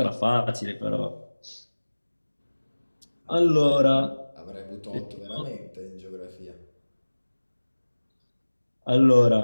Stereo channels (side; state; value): both; inverted; correlation -1.00